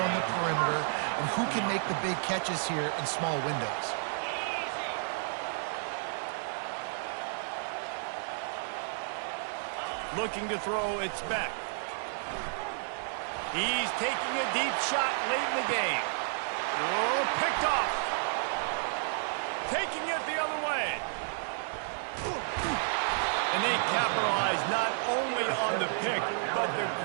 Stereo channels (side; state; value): left; silent; digital silence